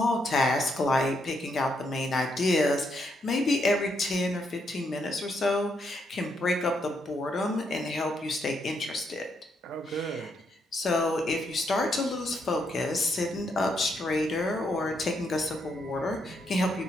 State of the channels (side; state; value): both; normal; correlation 0.77